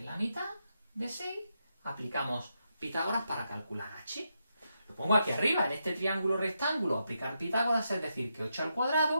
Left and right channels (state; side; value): inverted; both; correlation -0.84